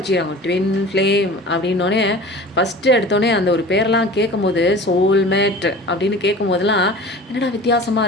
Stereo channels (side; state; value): both; normal; correlation 0.40